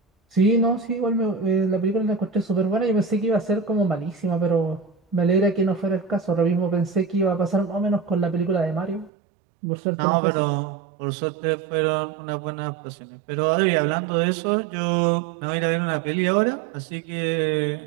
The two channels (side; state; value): left; drops out; at 9.1 s